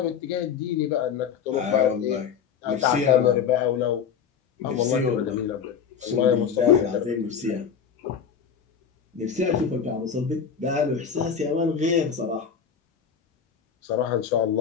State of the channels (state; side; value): quieter; right; 7.2 dB